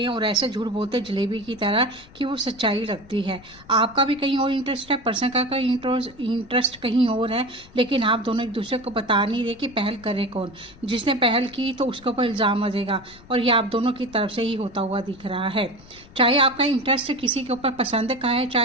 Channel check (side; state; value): left; noise; rumble, 23 dB below the sound